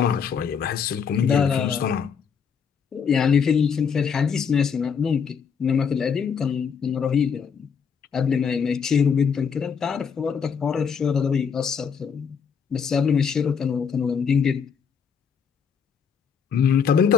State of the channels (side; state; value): right; quieter; 6.6 dB